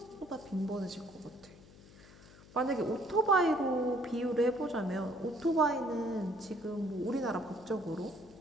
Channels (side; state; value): left; noise; hum, 21 dB below the sound